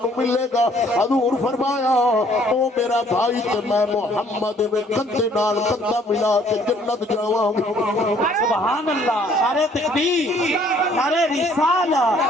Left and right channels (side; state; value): both; normal; correlation 0.61